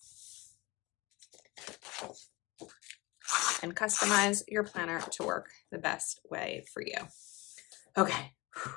And customize your planner to work the best way for you. Okay,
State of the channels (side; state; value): right; quieter; 23.2 dB